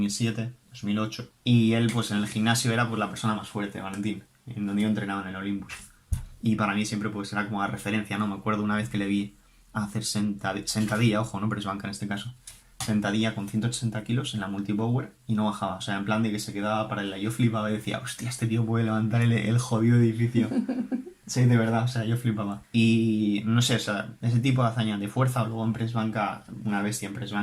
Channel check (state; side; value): identical; both; correlation 1.00